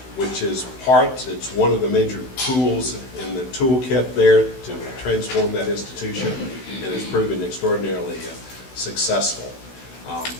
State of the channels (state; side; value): late; right; 16 ms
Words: which is it's one of the major tools in the toolkit there to transform that institution, and has proven extraordinarily successful.